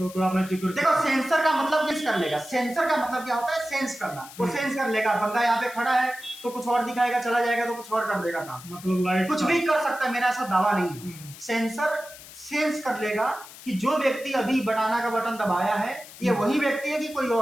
आपने जिक्र देखो सेंसर का मतलब किस कर लेगा, सेंसर का मतलब क्या होता है, सेंस करना। वो सेंस कर लेगा, बंदा यहाँ पे खड़ा है तो कुछ और दिखाएगा, चला जाएगा तो कुछ और कर देगा काम, मतलब लाइट कुछ भी कर सकता है, मेरा ऐसा दावा नहीं है। सेंसर सेंस कर लेगा कि जो व्यक्ति अभी बनाना का बटन दबाया है ये वही व्यक्ति है कि कोई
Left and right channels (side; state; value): left; noise; hiss, 17 dB below the sound